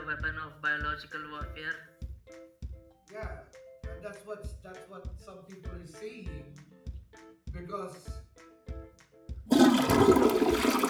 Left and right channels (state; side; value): identical; both; correlation 1.00